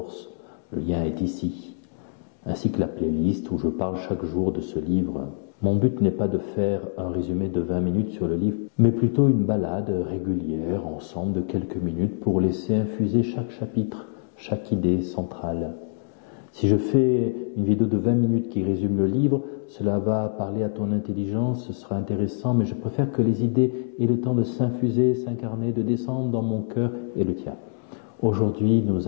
Le lien est ici, ainsi que la playlist où je parle chaque jour de ce livre. Mon but n'est pas de faire un résumé de 20 minutes sur le livre, mais plutôt une balade régulière ensemble de quelques minutes pour laisser infuser chaque chapitre, chaque idée centrale. Si je fais une vidéo de 20 minutes qui résume le livre, cela va parler à ton intelligence, ce sera intéressant, mais je préfère que les idées aient le temps de s'infuser, s'incarner, de descendre dans mon cœur et le tien. Aujourd'hui, nous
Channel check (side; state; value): right; silent; digital silence